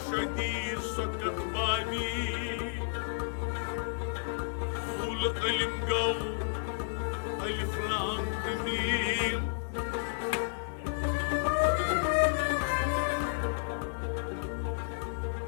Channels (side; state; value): right; silent; digital silence